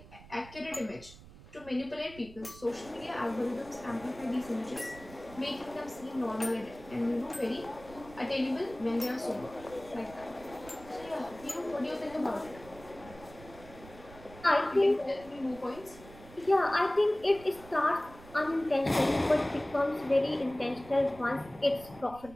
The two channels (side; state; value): right; noise; rumble, 19 dB below the sound